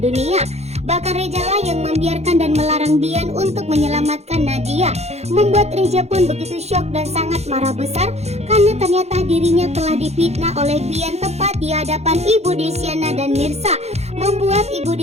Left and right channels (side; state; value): left; late; 0.31 ms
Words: Bahkan Reja lah yang membiarkan dan melarang Bian untuk menyelamatkan Nadia. Membuat Reja pun begitu syok dan sangat marah besar karena ternyata dirinya telah difitnah oleh Bian tepat di hadapan Ibu Desiana dan Mirsa. Membuat Ibu